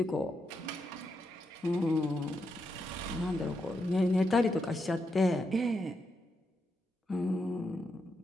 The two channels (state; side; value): normal; both; correlation 0.83